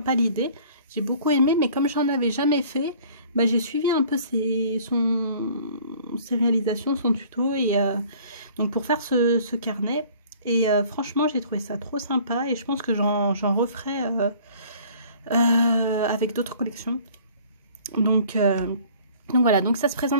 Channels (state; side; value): inverted; both; correlation -0.52